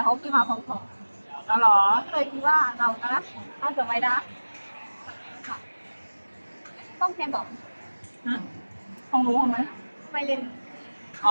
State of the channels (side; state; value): both; inverted; correlation -1.00